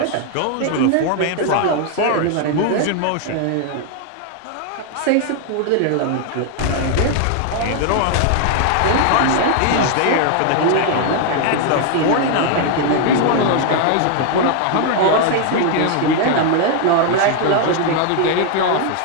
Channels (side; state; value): both; different; correlation 0.00